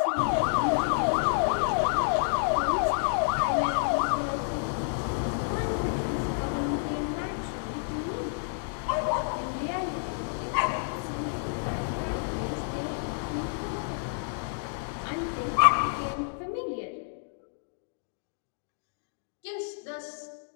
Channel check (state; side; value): silent; right; digital silence